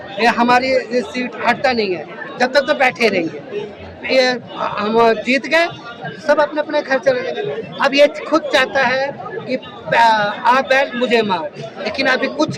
ये हमारी ये सीट हटता नहीं है, जब तक तो बैठे रहेंगे। ये हम जीत गए, सब अपने अपने घर चले जाएंगे। अब ये खुद चाहता है कि आप बैल मुझे मार, लेकिन अभी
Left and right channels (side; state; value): both; identical; correlation 1.00